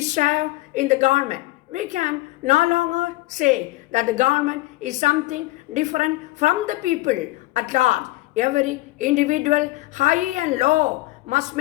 share in the government. We can no longer say that the government is something different from the people at large. Every individual, high and low, must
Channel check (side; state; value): right; quieter; 19.5 dB